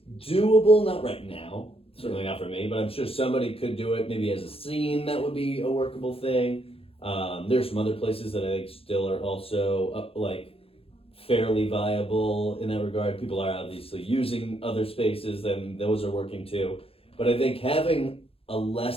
doable, not right now. Certainly not for me, but I'm sure somebody could do it maybe as a scene. That would be a workable thing. There's some other places that I think still are also like fairly viable in that regard. People are obviously using other spaces, then those are working too. But I think having a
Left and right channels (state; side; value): late; right; 0.27 ms